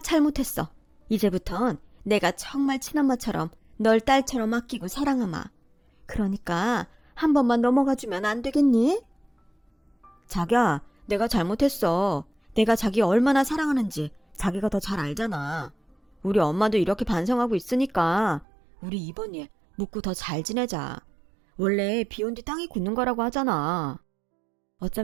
이제부턴 내가 정말 친엄마처럼 널 딸처럼 아끼고 사랑하마. 그러니까 한 번만 넘어가주면 안 되겠니? 자기야, 내가 잘못했어. 내가 자기 얼마나 사랑하는지 자기가 더 잘 알잖아. 우리 엄마도 이렇게 반성하고 있으니까 우리 이번 일 묻고 더 잘 지내자. 원래 비온 뒤 땅이 굳는 거라고 하잖아.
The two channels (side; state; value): left; drops out; at 18.4 s